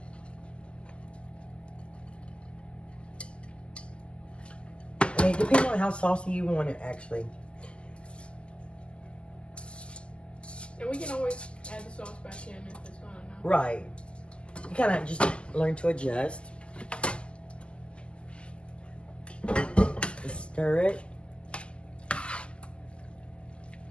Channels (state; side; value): late; right; 0.052 ms